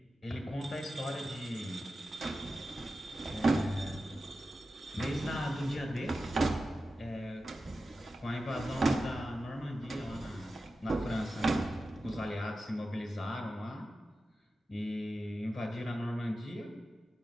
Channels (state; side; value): normal; both; correlation 0.92